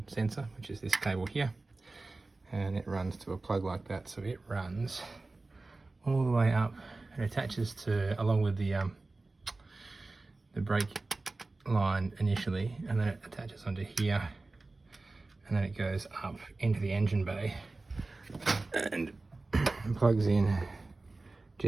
sensor, which is this cable here, and it runs to a plug like that, so it runs all the way up and attaches to, along with the brake line initially, and then it attaches onto here, and then it goes up into the engine bay and plugs in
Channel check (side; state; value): left; quieter; 3.3 dB